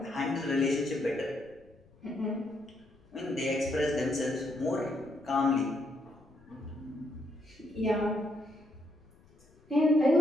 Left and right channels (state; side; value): noise; left; rumble, 28 dB below the sound